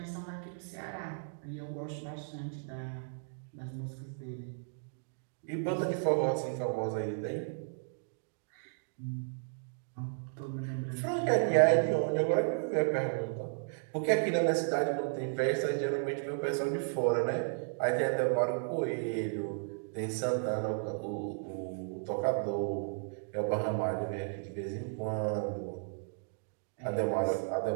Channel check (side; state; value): left; silent; digital silence